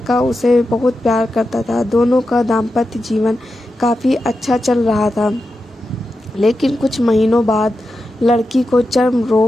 उसे बहुत प्यार करता था। दोनों का दाम्पत्य जीवन काफ़ी अच्छा चल रहा था। लेकिन कुछ महीनों बाद लड़की को चर्म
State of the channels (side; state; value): both; normal; correlation 0.90